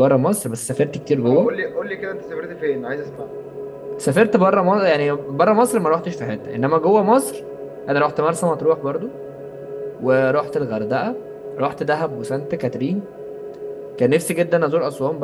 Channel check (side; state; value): both; identical; correlation 1.00